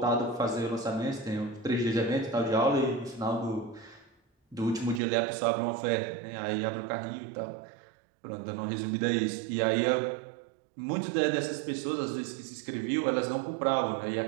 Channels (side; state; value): left; drops out; at 5.0 s